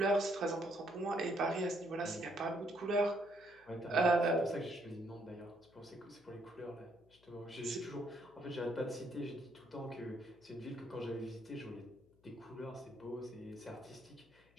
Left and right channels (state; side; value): noise; left; hum, 30 dB below the sound